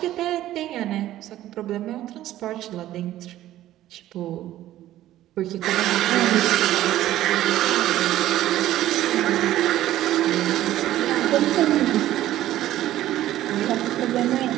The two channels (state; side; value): quieter; left; 13.8 dB